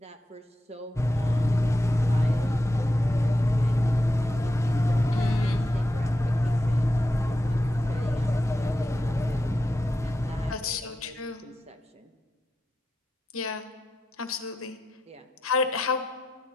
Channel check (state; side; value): normal; both; correlation 0.88